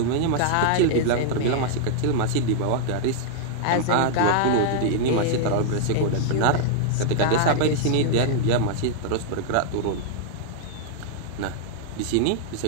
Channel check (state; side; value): different; both; correlation -0.01